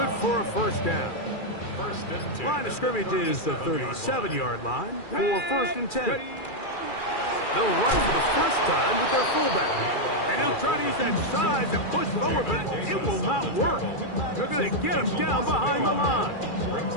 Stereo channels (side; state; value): right; late; 2.4 ms